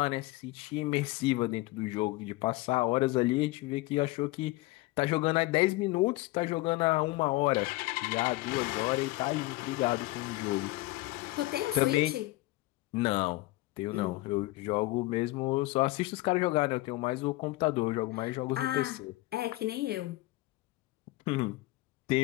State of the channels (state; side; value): quieter; right; 19.9 dB